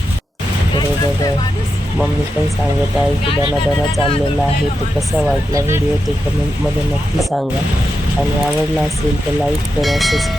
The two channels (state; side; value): normal; both; correlation 0.88